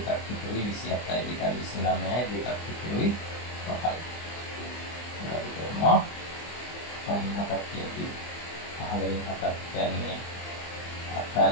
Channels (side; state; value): right; late; 24 ms